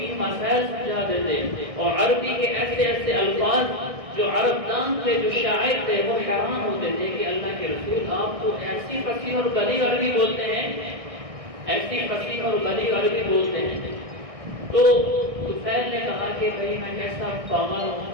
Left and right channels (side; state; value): left; late; 1.6 ms